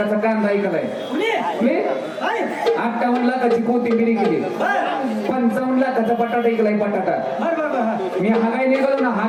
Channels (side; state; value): both; identical; correlation 1.00